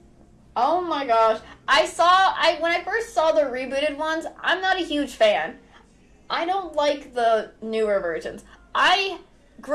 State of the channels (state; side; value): identical; both; correlation 1.00